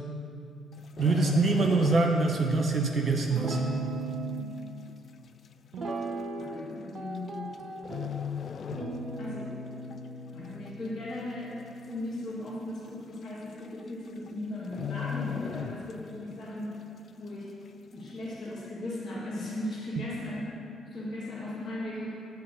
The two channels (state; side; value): normal; both; correlation 0.66